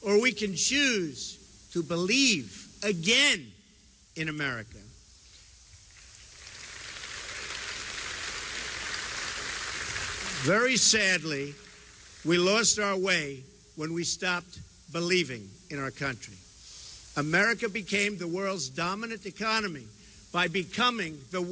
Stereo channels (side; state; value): both; identical; correlation 1.00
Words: or we can choose to believe again in America. Very sadly, we lost our way when we stopped believing in our country. America became the world's dominant economy by becoming the